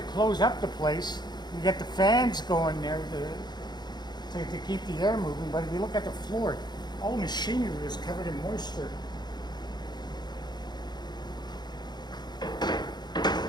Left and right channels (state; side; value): late; right; 0.21 ms